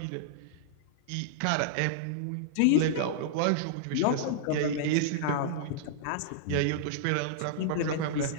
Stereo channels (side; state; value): both; different; correlation -0.02